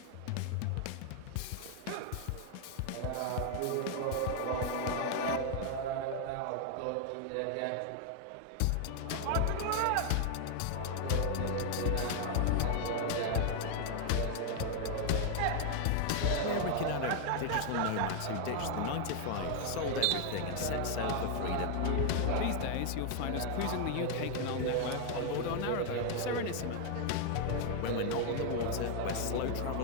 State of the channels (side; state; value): both; different; correlation 0.00